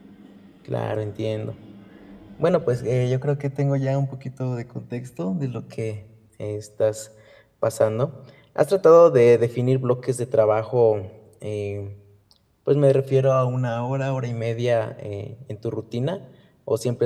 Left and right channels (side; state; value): both; identical; correlation 1.00